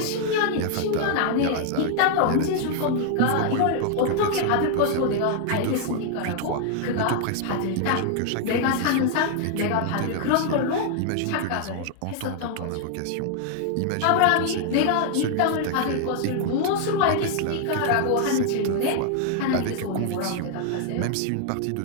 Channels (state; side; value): different; both; correlation 0.00